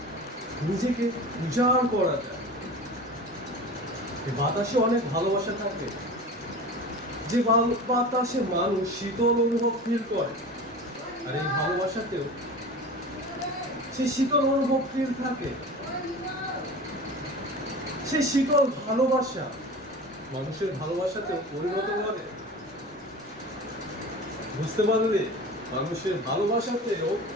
নিজেকে উজাড় করা যায়। বাতাসে অনেক ভালোবাসা থাকে, যে বাতাসে মানুষ শীতল অনুভব ফিল করে, আর এই ভালোবাসাতেও সেই শীতল অনুভব ফিল থাকে। সেই শীতল ভালোবাসা মানুষের ভালোবাসাতেও পরিণত করে। বুঝতে পারলে, মানুষের ভালোবাসাতেও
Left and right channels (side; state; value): right; noise; rumble, 29 dB below the sound